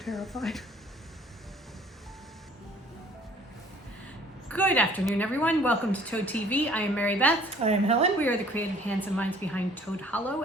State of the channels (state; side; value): normal; both; correlation 0.55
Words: Good afternoon, everyone. Welcome to Toad TV. I am Mary Beth. I am Helen. We are the creative hands and minds behind Toad Hollow,